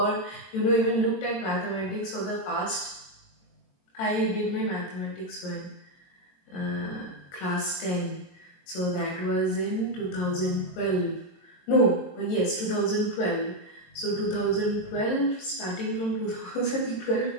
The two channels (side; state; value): right; late; 22 ms